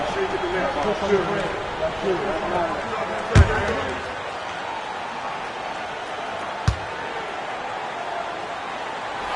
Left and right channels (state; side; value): identical; both; correlation 1.00